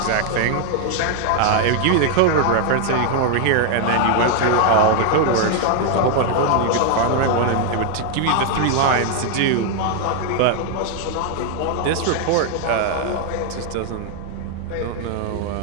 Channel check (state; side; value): different; both; correlation 0.00